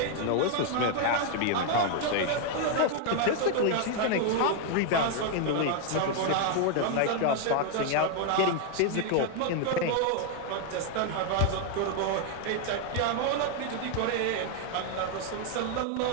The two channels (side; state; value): both; different; correlation 0.00